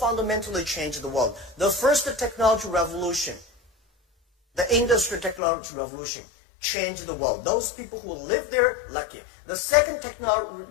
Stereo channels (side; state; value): right; drops out; at 5.4 s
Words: changed the world. The first technology revolution, the industrial technology revolution, changed the world. Those people who live there, lucky. The second technology